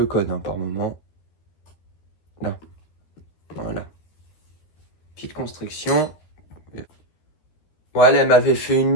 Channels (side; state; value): right; late; 13 ms